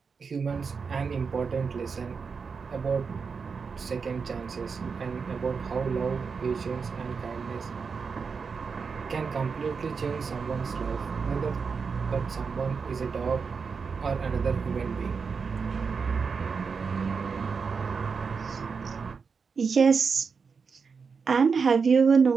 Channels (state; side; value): quieter; left; 5.4 dB